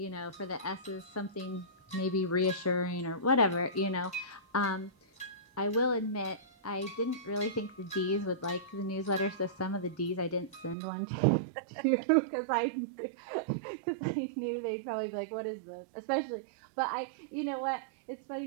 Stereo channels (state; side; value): drops out; left; at 10.8 s